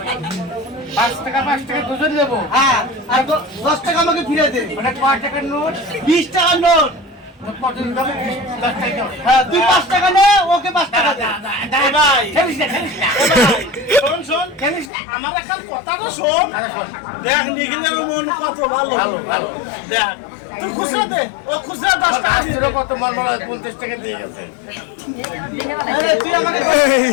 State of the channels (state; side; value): drops out; right; at 14.9 s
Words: 5 টাকা দুজন দেবো হ্যাঁ আর 10 টাকা আমাকে ফিরে দে মানে কয় টাকার নোট 20 টাকার নোট হ্যাঁ তুই 5 টাকা নে ওকে 5 টাকা দে ভাই খেলিস না শোন খেলিস না আমার একটা কথা তো শোন দেখ নিখিলের মন কত ভালো দেখ তুই খুচরা দে ও খুচরা 10 টাকা দিল কত মন বলা 50 টাকা দিয়ে গেছে আরে তুই আমাকে